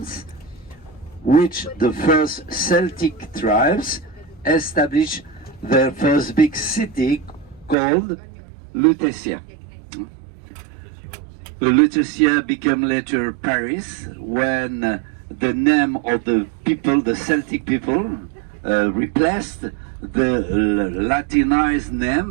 which the first Celtic tribes established their first big city called Lutetia. Lutetia became later Paris when the name of the people, the Celtic people, replaced the Latinized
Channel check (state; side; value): drops out; left; at 7.8 s